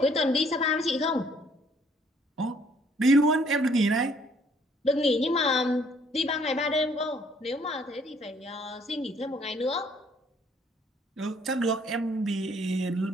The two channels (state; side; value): normal; both; correlation 0.63